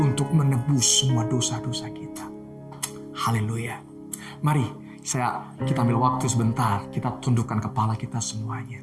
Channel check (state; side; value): identical; both; correlation 1.00